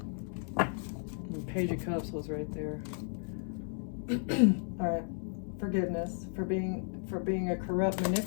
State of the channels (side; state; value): right; silent; 55 dB below the other